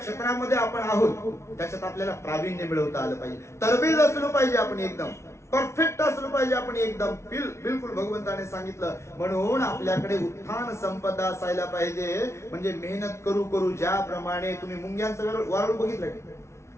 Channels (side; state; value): right; late; 0.13 ms